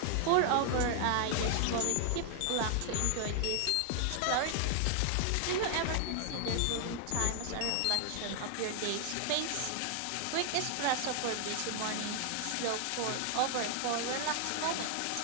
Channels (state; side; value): different; both; correlation 0.00